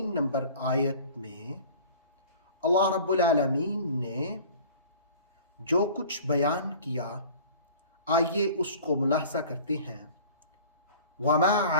نمبر آیت میں اللہ رب العالمین نے جو کچھ بیان کیا، آئیے اس کو ملاحظہ کرتے ہیں۔ وما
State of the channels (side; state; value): both; inverted; correlation -0.44